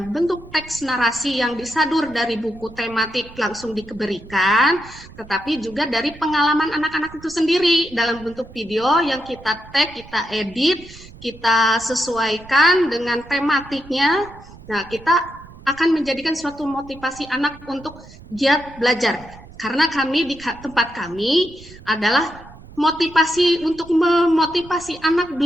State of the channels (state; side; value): noise; right; rumble, 20 dB below the sound